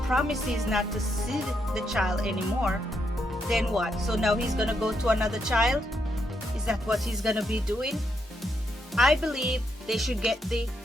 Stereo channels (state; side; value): normal; both; correlation 0.79